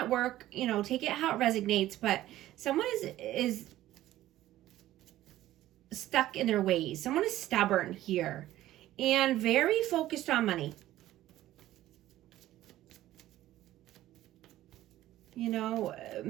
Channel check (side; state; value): left; quieter; 14.5 dB